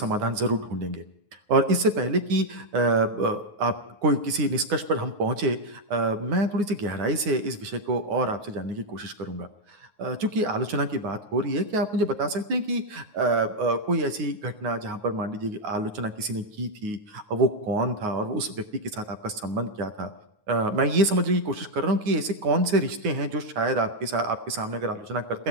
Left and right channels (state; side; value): late; left; 9.6 ms